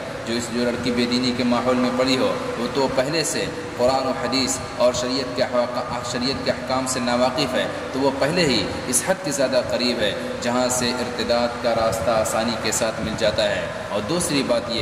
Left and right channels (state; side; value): identical; both; correlation 1.00